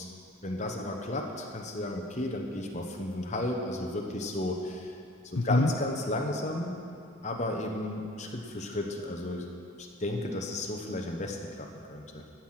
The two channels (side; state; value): both; normal; correlation 0.48